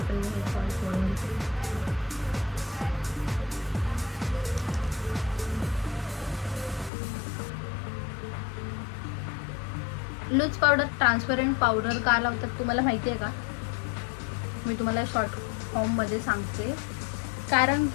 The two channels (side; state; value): right; drops out; at 6.9 s